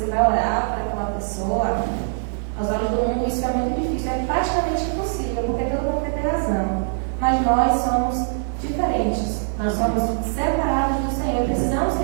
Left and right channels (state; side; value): silent; left; 62 dB below the other